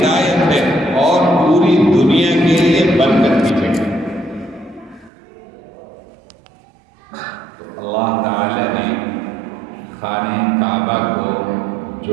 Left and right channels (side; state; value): left; drops out; at 5.1 s